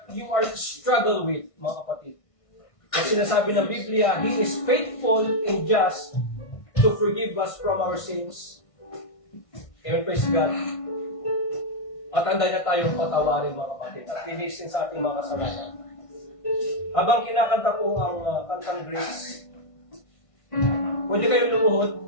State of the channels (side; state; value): right; late; 1.5 ms